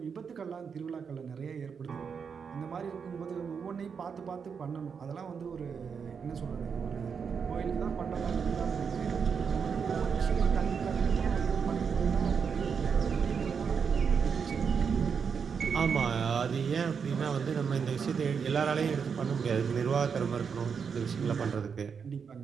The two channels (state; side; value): quieter; left; 6.3 dB